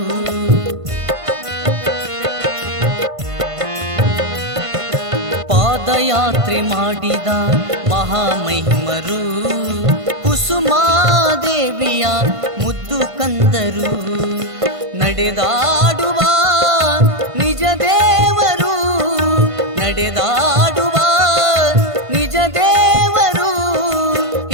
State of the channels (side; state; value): left; late; 1.5 ms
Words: ಪಾದಯಾತ್ರೆ ಮಾಡಿದ ಮಹಾಮಹಿಮರು, ಕುಸುಮಾದೇವಿಯ ಮುದ್ದು ಕಂದರು. ನಡೆದಾಡುವ ನಿಜ ದೇವರು, ನಡೆದಾಡುವ ನಿಜ ದೇವರು,